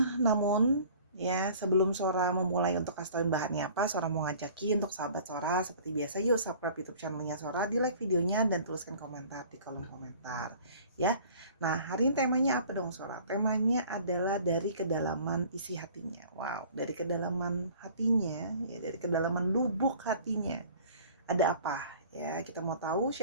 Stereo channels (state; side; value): inverted; both; correlation -0.49